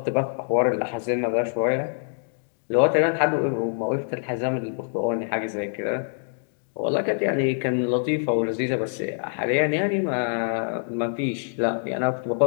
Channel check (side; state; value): right; silent; digital silence